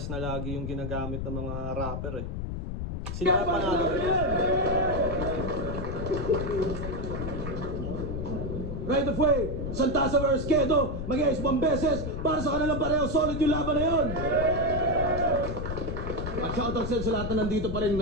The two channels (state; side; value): noise; left; rumble, 4 dB below the sound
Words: na lagi yung ginagamit ng mga rapper eh. Sila panalo. Right of way, Santasa vs. Kedo, mag-iayos 1 beses para sa kanilang pareho, solid yung laban na yun. At shoutout sa lahat na nandito pa rin